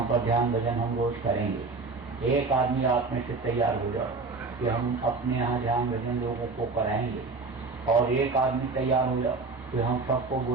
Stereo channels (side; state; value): left; quieter; 4.0 dB